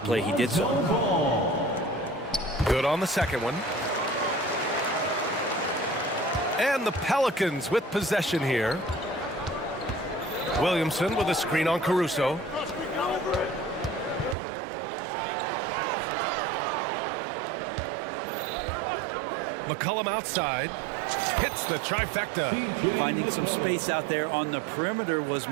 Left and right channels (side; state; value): left; drops out; at 14.4 s